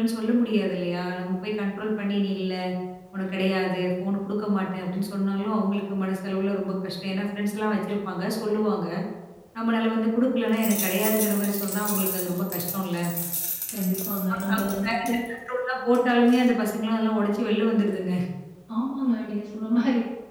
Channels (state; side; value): identical; both; correlation 1.00